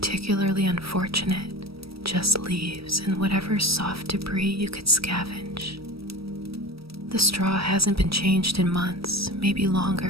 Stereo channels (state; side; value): late; left; 0.76 ms